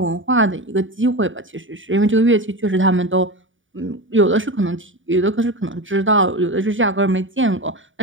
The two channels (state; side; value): late; left; 0.57 ms